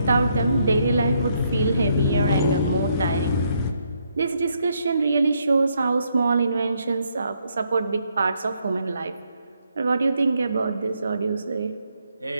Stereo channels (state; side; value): inverted; both; correlation -0.74